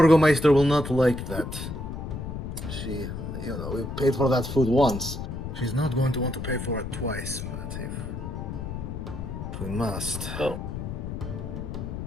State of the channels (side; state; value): left; noise; rumble, 6 dB below the sound